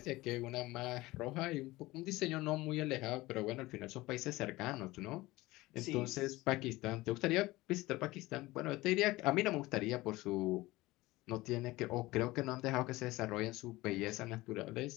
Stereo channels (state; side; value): quieter; right; 19.5 dB